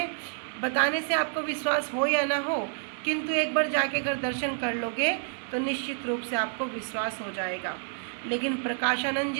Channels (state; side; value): silent; left; 58 dB below the other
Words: बताने से आपको विश्वास हो या ना हो, किंतु एक बार जाके अगर दर्शन कर लोगे तो निश्चित रूप से आपको विश्वास हो जाएगा। लेकिन प्रकाशानंद